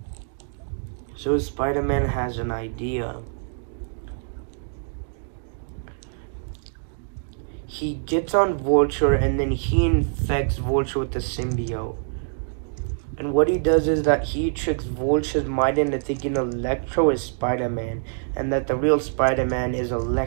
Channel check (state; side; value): silent; left; digital silence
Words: So Spider-Man has an idea. He gets on Vulture, and then he infects Vulture with the symbiote. And what he does is that he tricks Vulture's mind into thinking Electro is Spider-Man, and that the real Spider-Man is